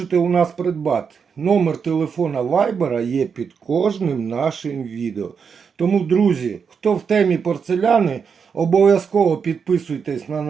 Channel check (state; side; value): quieter; left; 6.2 dB